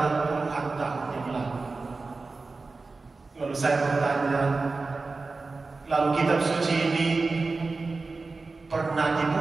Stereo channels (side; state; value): left; quieter; 3.8 dB